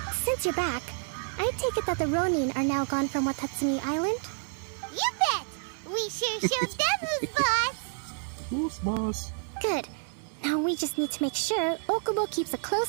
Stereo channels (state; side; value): silent; left; 58 dB below the other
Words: Since you're back, I take it that the Ronin are now gone from Watatsumi Island? You bet! We sure showed them who's boss! Who's boss? Good. Now we just need to make sure Okubo keeps a